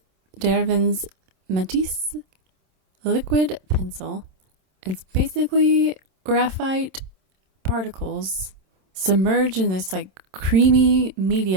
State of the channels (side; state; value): left; late; 27 ms